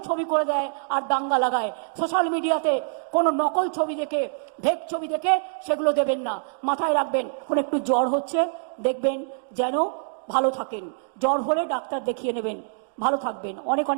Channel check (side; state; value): left; silent; digital silence